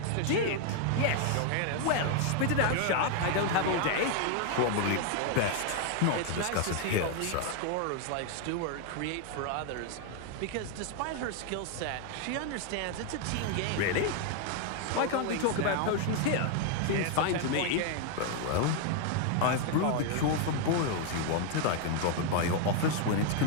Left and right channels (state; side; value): different; both; correlation 0.00